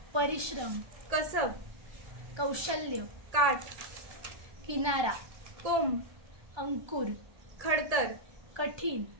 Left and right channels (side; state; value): left; late; 1.2 ms